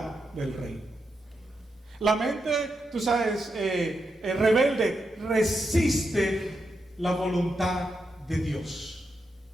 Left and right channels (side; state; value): both; normal; correlation 0.85